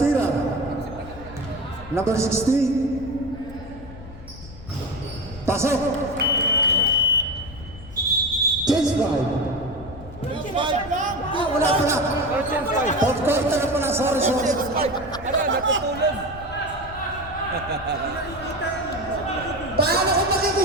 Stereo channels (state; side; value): noise; left; rumble, 15 dB below the sound